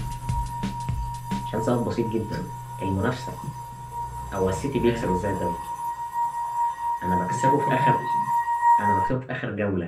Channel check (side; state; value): both; identical; correlation 1.00